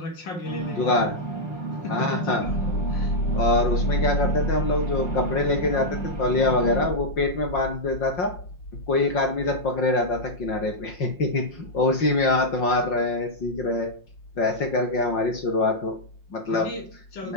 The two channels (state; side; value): late; right; 5.6 ms